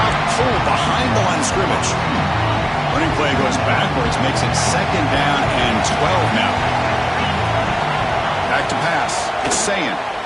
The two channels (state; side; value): identical; both; correlation 1.00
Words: cold behind the line of scrimmage. Running play goes backwards. Makes it 2nd down and 12 now. Back to pass. It's Sayan.